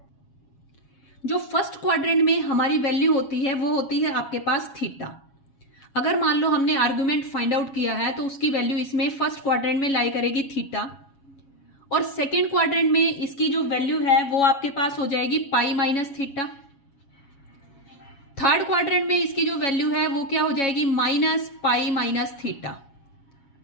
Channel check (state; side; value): late; right; 7.2 ms